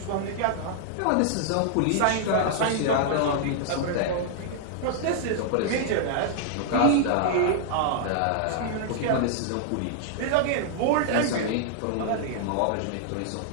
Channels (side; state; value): both; different; correlation -0.01